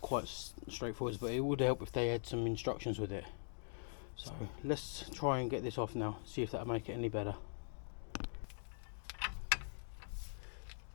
straightforward, but it would help if they had some instructions with it. So let's try and get this off now, see if that'll make it any better.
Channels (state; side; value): silent; right; digital silence